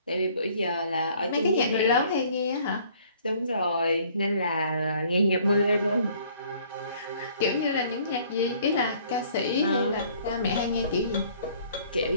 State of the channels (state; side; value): inverted; both; correlation -0.58